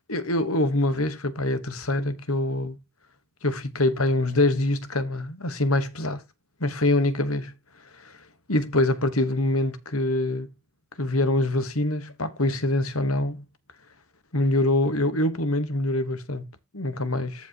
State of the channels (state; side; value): normal; both; correlation 0.37